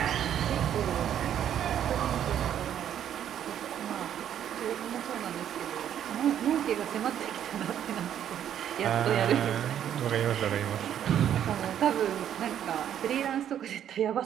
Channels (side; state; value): left; quieter; 10.0 dB